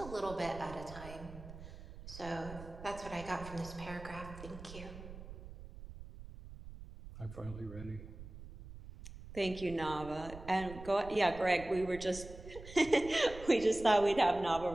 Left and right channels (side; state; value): right; noise; rumble, 14 dB below the sound